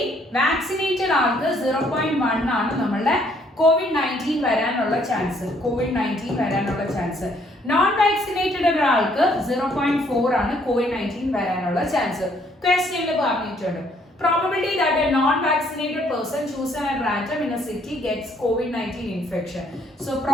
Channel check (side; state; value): both; normal; correlation 0.66